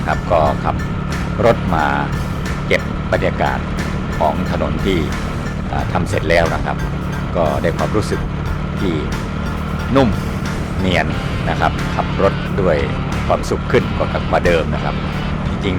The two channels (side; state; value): both; identical; correlation 1.00